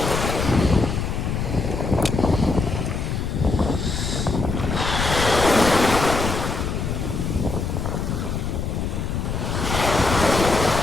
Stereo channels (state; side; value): noise; left; rumble, 2 dB below the sound